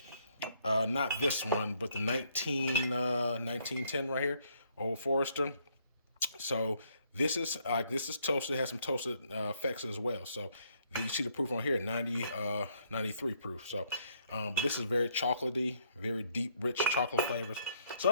not this one, but the 1910 right here, Old Forester. So this is toasted, has some toasted effects as well. So you see the proof on here, 93 proof. So but this is very chocolatey, very deep, rich chocolate flavors. So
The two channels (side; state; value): both; inverted; correlation -0.70